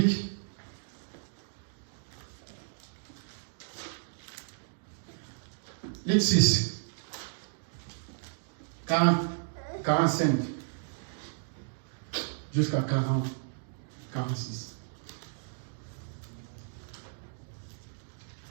Luc 6. 45. Jusqu'à 40. 46.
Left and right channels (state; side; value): silent; left; digital silence